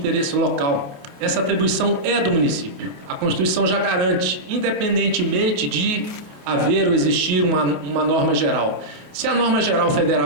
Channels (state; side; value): late; left; 28 ms